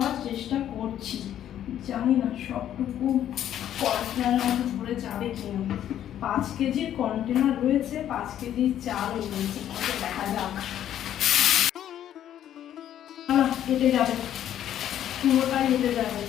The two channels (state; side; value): quieter; right; 11.0 dB